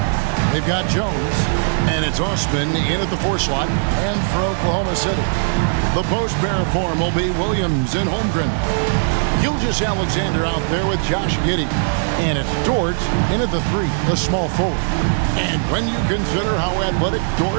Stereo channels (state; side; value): silent; left; digital silence